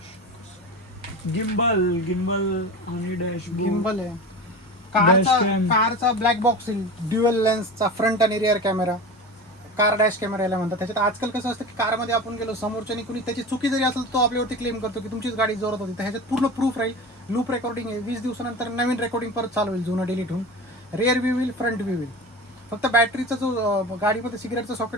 गिम्बल आणि डॅशबोर्ड. गिम्बल आहे. Dashcam. कारचा ब्लॅक बॉक्स येईल. ड्युअल लेन्सचा फ्रंट आणि rear camera. Car dash camera याला म्हणतात. त्याच्यात आजकाल कसं असतं की कारमध्ये आपण गेलो समोरच्यानी कुणी त्याची चुकी जरी असेल तो आपल्यावरती क्लेम करतो की तुमचीच गाडी जोरात होती. तर ह्याच्यात पूर्ण प्रूफ राहील. लूप रेकॉर्डिंग आहे. 20 दिवसानंतर नवीन रेकॉर्डिंग परत चालू होईल जुनं डिलीट होऊन. रिअर व्ह्यू होईल, फ्रंट व्ह्यू होईल. फक्त बॅटरीचा जो गाडीमध्ये सिगरेटचा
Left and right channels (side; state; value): both; normal; correlation 0.30